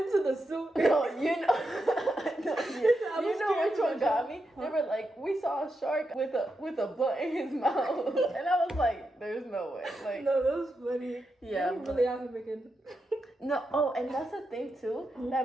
the zoo. No, you know, no, I you was know which scared one got me? They were like, we saw a shark with a blunt in his mouth, and I was like, there's no way. Like, No, that was funny. yeah, They're really out here making. no. Oh, and that's the thing too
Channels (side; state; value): both; normal; correlation 0.86